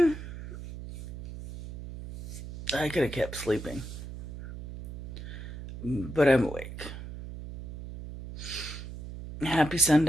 I could have kept sleeping, but I'm awake. Happy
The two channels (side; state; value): right; noise; hum, 10 dB below the sound